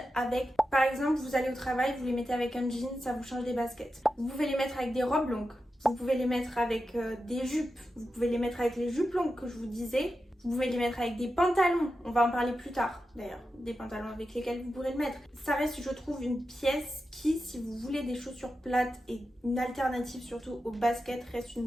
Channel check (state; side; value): normal; both; correlation 0.90